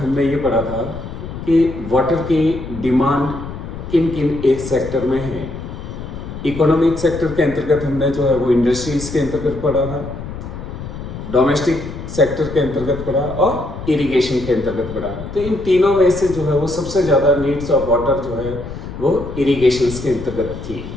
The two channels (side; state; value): left; noise; rumble, 10 dB below the sound